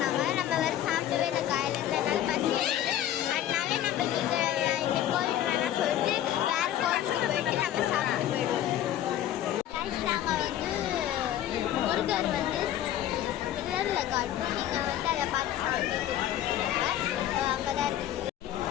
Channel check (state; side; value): quieter; right; 11.9 dB